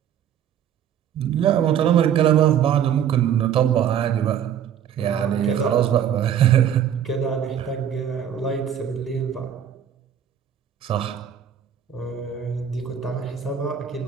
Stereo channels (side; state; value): left; quieter; 9.1 dB